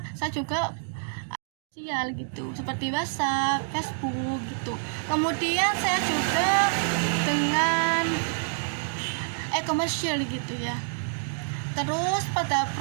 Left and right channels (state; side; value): silent; left; digital silence